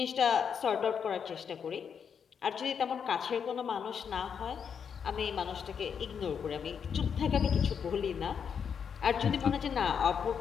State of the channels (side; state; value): right; quieter; 7.1 dB